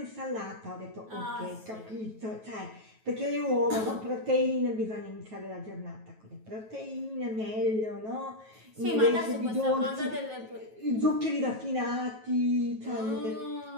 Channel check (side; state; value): left; late; 9.2 ms